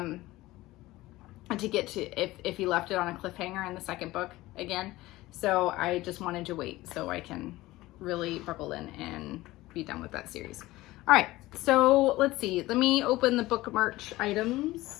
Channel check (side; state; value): right; quieter; 18.1 dB